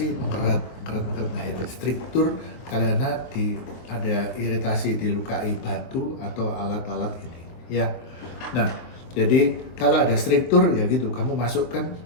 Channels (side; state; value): right; late; 23 ms